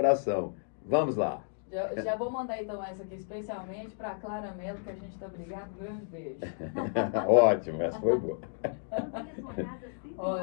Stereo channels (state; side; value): silent; right; digital silence